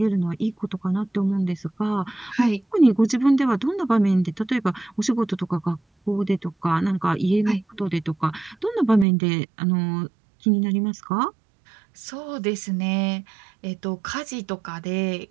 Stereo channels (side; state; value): left; drops out; at 9.1 s